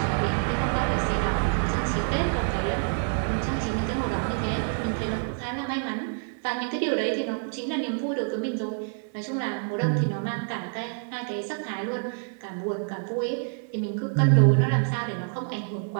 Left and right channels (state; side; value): silent; left; 60 dB below the other